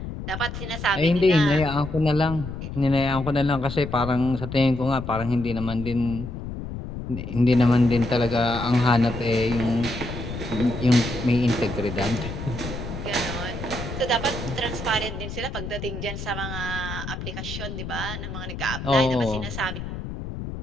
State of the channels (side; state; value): left; noise; rumble, 8 dB below the sound